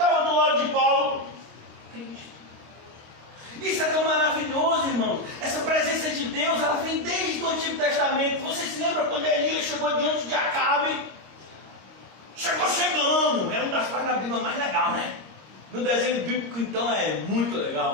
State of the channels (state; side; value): late; left; 26 ms